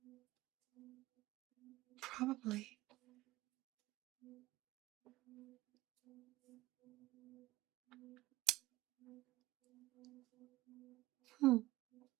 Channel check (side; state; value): left; quieter; 18.0 dB